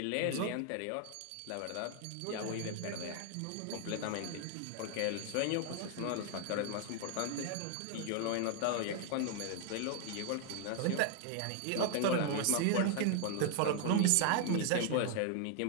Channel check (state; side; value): different; both; correlation 0.00